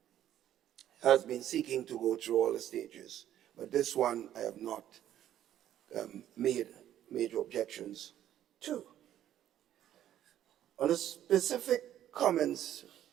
has been seeking to go through all the stages. But this one I have not made major objections to. On the specific comments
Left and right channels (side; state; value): left; quieter; 11.6 dB